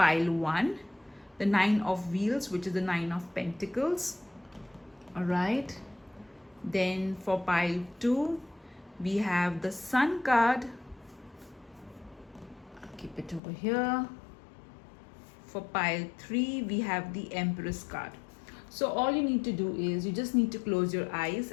1 the 9 of wheels, which is the 9 of pentacles. All right, then for pile 2 we have the sun card. I'll keep it over here. For pile 3 we have the empress card. So all you need to do is you just need to close your eyes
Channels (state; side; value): drops out; right; at 13.4 s